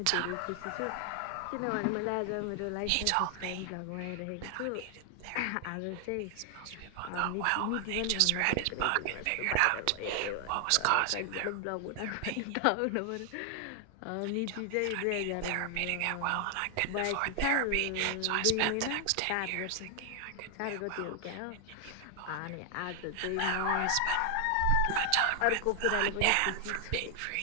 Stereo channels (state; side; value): different; both; correlation 0.00